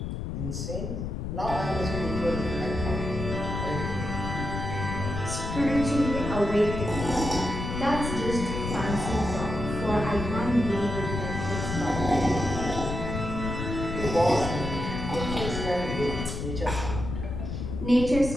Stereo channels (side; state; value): left; noise; rumble, 4 dB below the sound